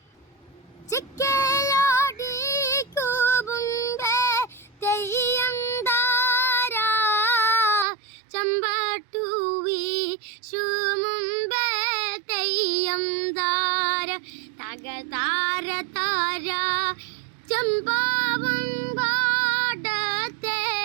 ചിക്കലോടി കൂബുമ്പേ തെയ്യം താരാ ചമ്പട്ടൂവി ശുമുമ്പേ തെയ്യം താര തക താര താര ചമ്പാവും പാടത്തെ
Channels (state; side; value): drops out; left; at 7.9 s